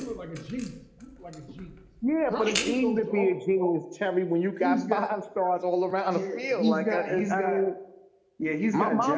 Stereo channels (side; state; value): both; identical; correlation 1.00